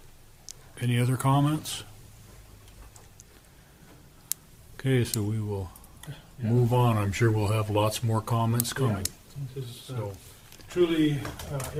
Any other comments? Okay, so we will move on. I'm sure we'll have lots more comments coming. This is So, truly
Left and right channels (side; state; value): both; identical; correlation 1.00